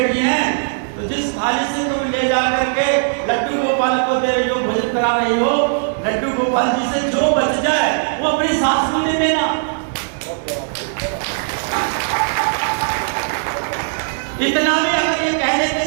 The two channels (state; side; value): silent; left; digital silence